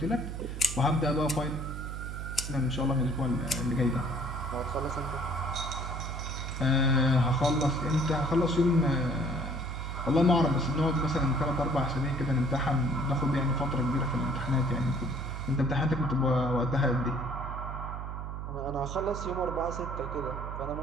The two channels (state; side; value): noise; right; hum, 6 dB below the sound